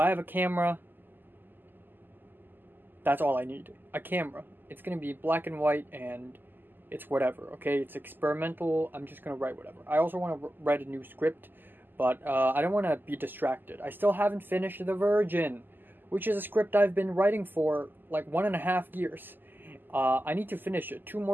have a camera, that's all I need. A camera. It's going to be black and white, and it's whatever, okay? It's experimental. I'm just going to write whatever. I also want to write a new script, but I don't want to be distracted. I still haven't finished The Virgin, which is a script I've been writing for like 1.5 years. I need to finish it. 2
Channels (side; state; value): left; late; 0.091 ms